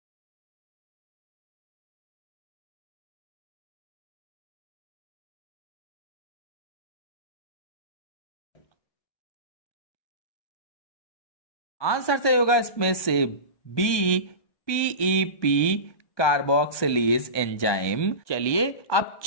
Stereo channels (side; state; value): right; late; 1.2 ms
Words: आंसर सही होगा इसमें से बी, पीईपी कार्बोक्सिलेज एंजाइम। चलिए अब